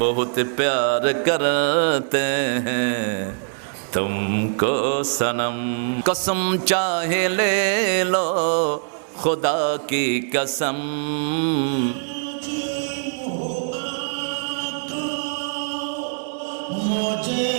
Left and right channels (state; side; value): silent; left; 64 dB below the other